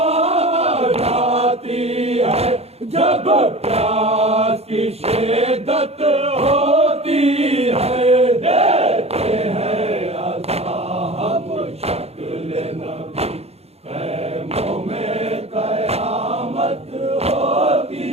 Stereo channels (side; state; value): left; late; 0.30 ms